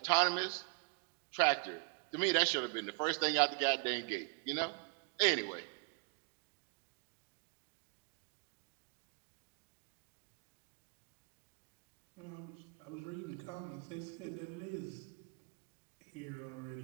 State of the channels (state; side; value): quieter; left; 34.9 dB